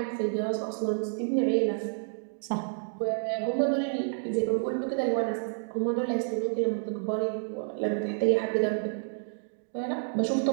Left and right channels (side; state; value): left; silent; digital silence